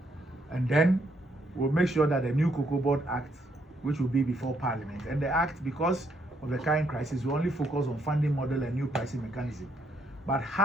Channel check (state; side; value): normal; both; correlation 0.73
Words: And then we'll make sure that the new COCOBOD Act, which will be before Parliament, and the Act, because of the current crisis, we only focus on funding model and new pricing mechanism. But